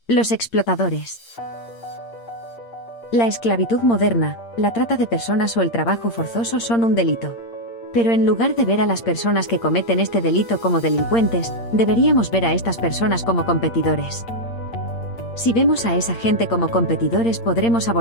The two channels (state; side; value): late; right; 8.7 ms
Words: Los explotadores. La esclavitud moderna, la trata de personas o el trabajo forzoso son un delito. Pero en lugar de ver a las personas que cometen este delito como delincuentes, deberíamos ver a estas personas como competidores. Si vemos a esa gente como competidores podremos